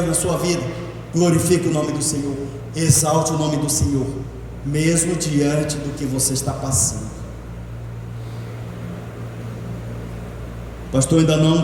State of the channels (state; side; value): identical; both; correlation 1.00